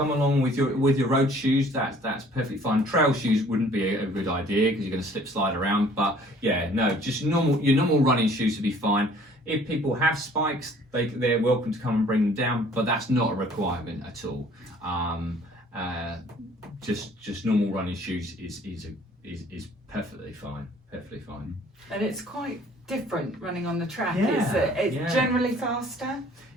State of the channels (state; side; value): normal; both; correlation 0.55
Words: along with your road shoes. That's perfectly fine. Trail shoes wouldn't be a good idea because you're going to slip slide around. But yeah, no, just your normal running shoes would be fine. If people have spikes, they're welcome to come and bring them down, but that's not a requirement at all. Just normal running shoes is perfectly fine. Perfectly fine. And it's quite different running on the track. Yeah, It's generally faster.